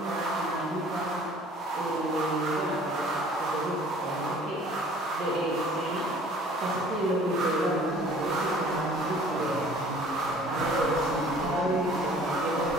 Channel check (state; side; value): normal; both; correlation 0.51